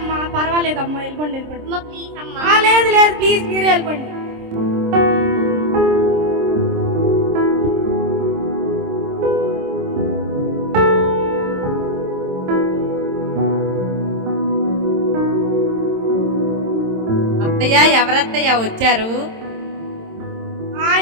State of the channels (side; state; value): left; late; 26 ms